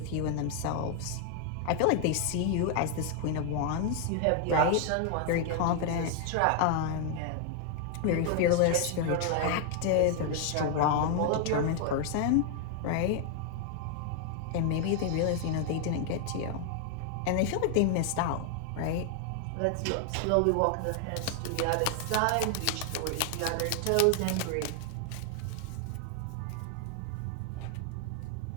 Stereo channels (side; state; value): both; different; correlation 0.00